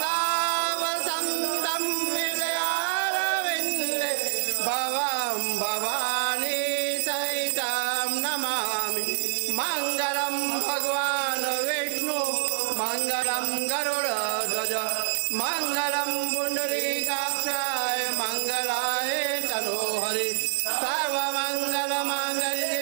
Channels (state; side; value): silent; left; 61 dB below the other